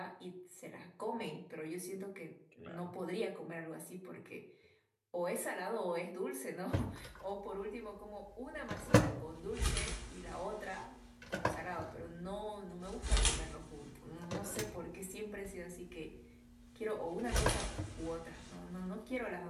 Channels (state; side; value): identical; both; correlation 1.00